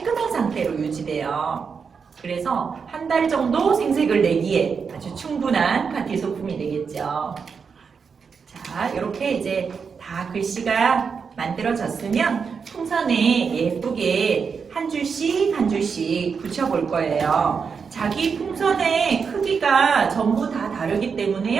상태로 유지돼요. 그래서 한 달 정도 생색을 내기에 아주 충분한 파티 소품이 되겠죠. 자, 이렇게 이제 다 글씨가 만들어졌으면 풍선에 예쁘게 한 줄씩 붙여볼 거예요. 자기 풍선의 크기가 전부 다 다르기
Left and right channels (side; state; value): left; quieter; 5.8 dB